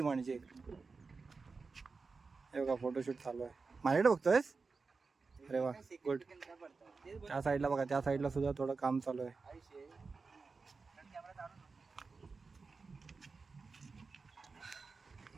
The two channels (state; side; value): quieter; left; 4.4 dB